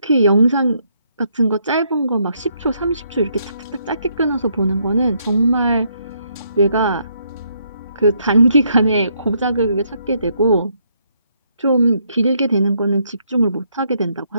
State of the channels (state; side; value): inverted; both; correlation -0.74